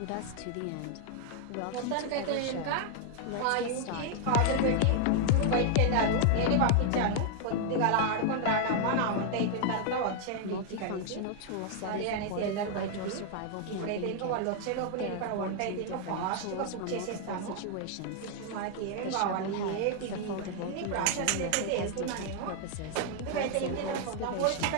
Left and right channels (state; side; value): different; both; correlation 0.00